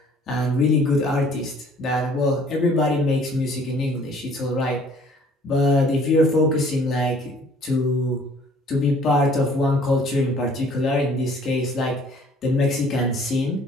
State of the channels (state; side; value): normal; both; correlation 0.56